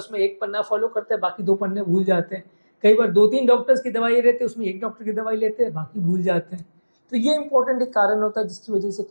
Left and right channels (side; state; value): both; inverted; correlation -1.00